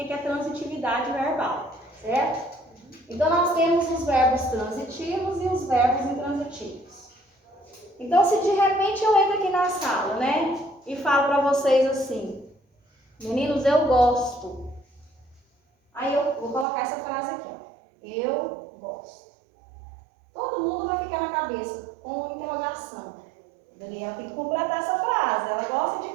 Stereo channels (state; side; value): drops out; left; at 16.7 s